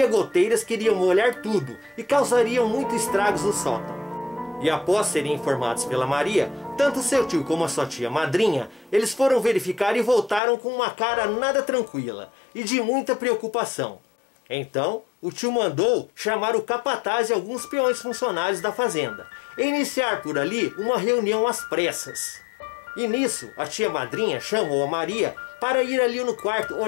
goteiras que iriam molhar tudo e causariam muitos estragos no sótão. E após serem informados pela Maria, tanto seu tio como a sua tia madrinha, eles foram verificar e voltaram com uma cara nada tranquila e de muita preocupação. Então, o tio mandou chamar o capataz e alguns peões funcionários da fazenda e iniciar por ali uma reunião às pressas. E nisso, a tia madrinha chamou a Maria para ir ali no quarto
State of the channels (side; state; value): right; drops out; at 10.4 s